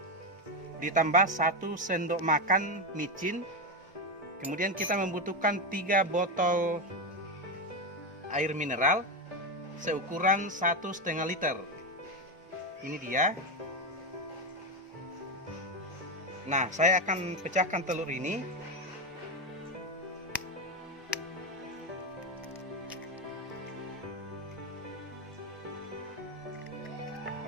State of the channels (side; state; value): both; normal; correlation 0.11